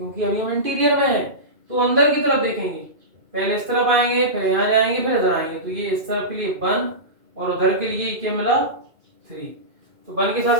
अभी हम इंटीरियर में हैं, तो अंदर की तरफ देखेंगे, पहले इस तरफ आएंगे, फिर यहाँ जाएंगे, फिर इधर आएंगे, तो ये इस तरफ के लिए 1 और उधर के लिए क्या मिला 3, तो 1 के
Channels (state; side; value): late; left; 2.5 ms